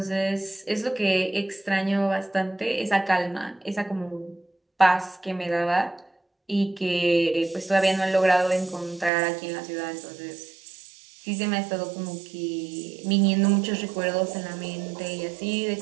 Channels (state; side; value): drops out; left; at 9.1 s